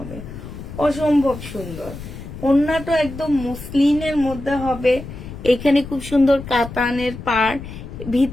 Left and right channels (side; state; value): left; noise; rumble, 12 dB below the sound